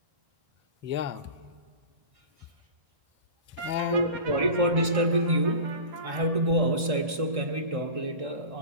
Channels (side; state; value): left; late; 1.6 ms